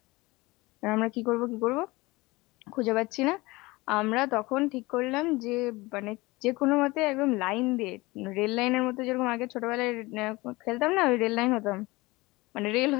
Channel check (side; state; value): right; quieter; 22.0 dB